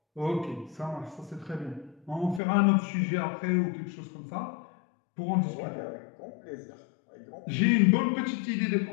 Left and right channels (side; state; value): right; drops out; at 2.4 s